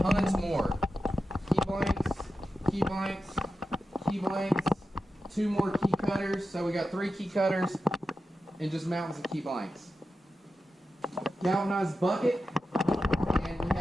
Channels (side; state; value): both; normal; correlation 0.91